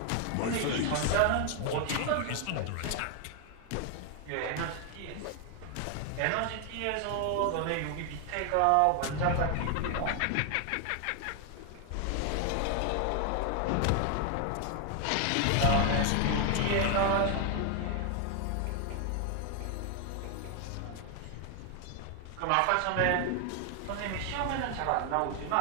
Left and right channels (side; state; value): both; different; correlation 0.00